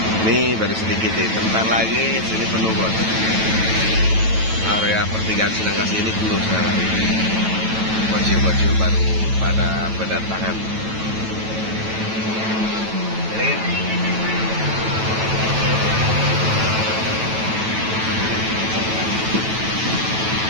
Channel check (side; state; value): left; late; 9.1 ms